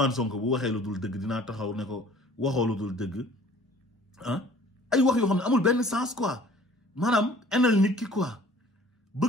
Sonko bu waxee lu dul dëgg dinaa taxaw ne ko waxoo lu dul dëgg ah ay wax yoo xam ne amul benn sens quoi maanaam enal nit ki quoi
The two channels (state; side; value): normal; both; correlation 0.51